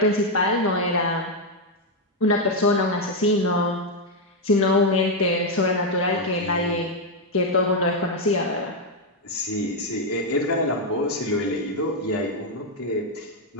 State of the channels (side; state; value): both; normal; correlation 0.02